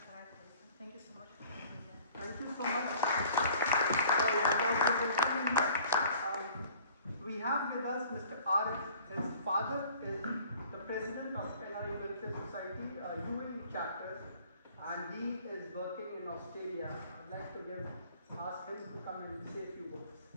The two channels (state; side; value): inverted; both; correlation -0.50